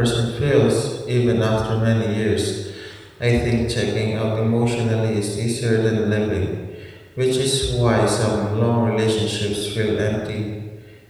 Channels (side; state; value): both; identical; correlation 1.00